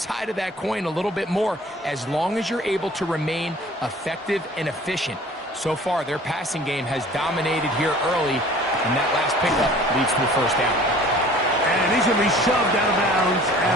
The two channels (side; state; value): both; normal; correlation 0.49